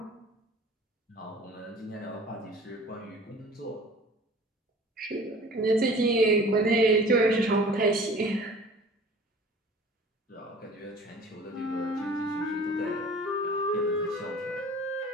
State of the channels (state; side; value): normal; both; correlation 0.45